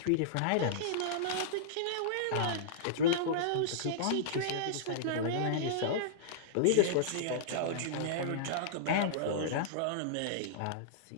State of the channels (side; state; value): both; different; correlation -0.02